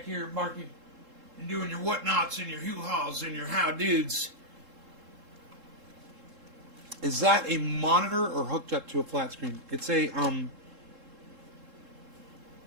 here barking and doing your whatnots and your hoo-haws and your how-dudes. Is that a monitor or hooked up to a flat screen? It's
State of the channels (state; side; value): late; left; 3.7 ms